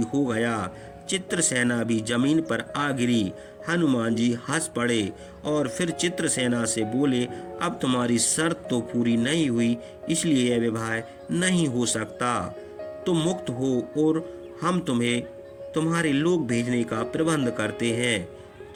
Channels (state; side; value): identical; both; correlation 1.00